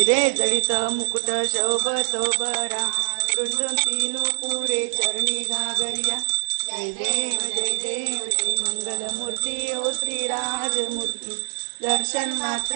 जडित मुकुट शोभतो बरा रुंदून तीनु पुरे चरणी घागरिया जय देव जय देव जय मंगलमूर्ती ओ श्रीराजमूर्ती दर्शन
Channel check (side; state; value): left; silent; digital silence